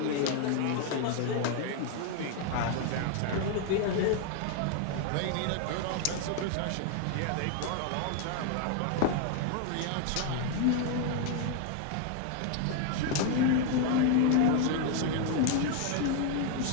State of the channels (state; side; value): different; both; correlation 0.01